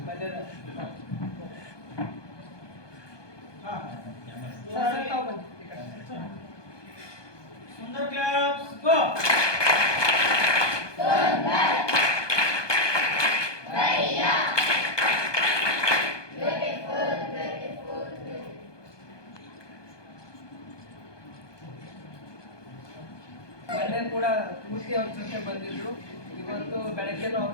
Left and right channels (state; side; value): late; right; 1.2 ms